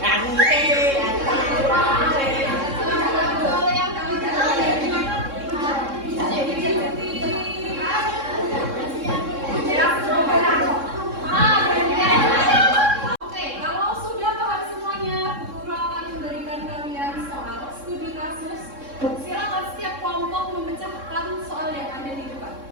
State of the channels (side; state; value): left; late; 3.6 ms